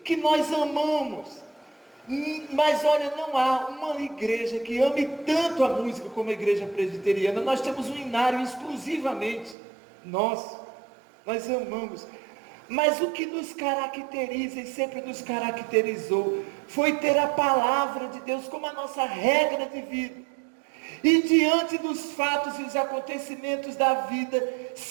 que nós amamos. Mas olha, não há uma igreja que ame tanto a música como a igreja presbiteriana. Nós temos um hinário exclusivamente nós amamos. Mas o que nos caracteriza e sempre nos caracterizou foi ter a palavra de Deus como a nossa regra de vida. E diante dos fatos e os acontecimentos da vida,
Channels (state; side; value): drops out; left; at 9.6 s